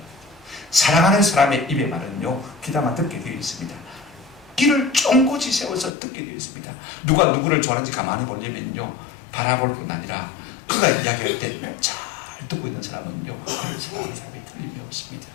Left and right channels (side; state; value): right; drops out; at 5.9 s